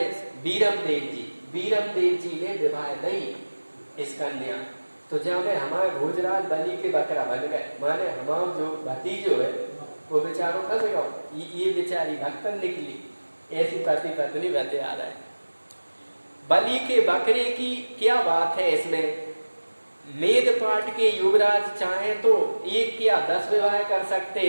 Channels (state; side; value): inverted; both; correlation -1.00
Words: बीरम देव जी ने विवाह नहीं इस कन्या। तो जब हमारे भोजराज बलि के बकरा बन गए, माने हमारा जो भतीजो है वो बेचारों फंस गया। ये बेचारी भक्तन निकली। ऐसी पति पत्नी बता रहा है। बलि के बकरे की क्या बात है इसमें? मेद पाट के युवराज चाहे तो एक या 10 विवाह कर सकते